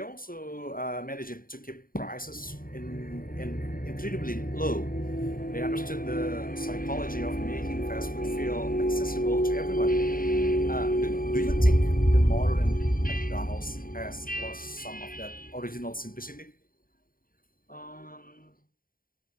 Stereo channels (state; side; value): late; right; 0.41 ms